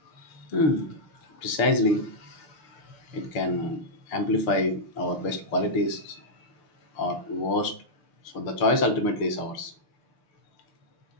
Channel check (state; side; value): late; right; 6.7 ms